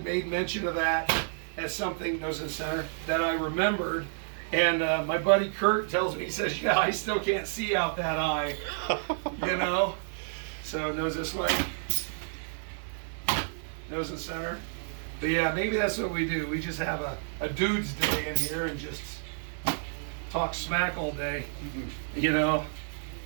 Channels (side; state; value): left; silent; digital silence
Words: mention of that as something, nose in the center, that I remembered. And my buddy Kurt tells me, he says, yeah, I still can't see out that eye, you know? So nose this way, nose in the center. But yeah, maybe that's what we do. We just have a dude's day in here and just talk smack all day, you know?